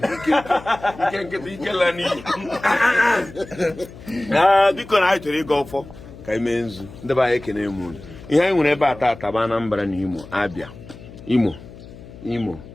ike nkịta ike la n'iyi biko na anyị chọrọ ịga ọfọ ka anyị mee nzu ndị be anyị ekene m unu ihe anyị nwere ebe a tata bụ Anambra na Imo Abia Imo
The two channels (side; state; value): left; noise; hum, 17 dB below the sound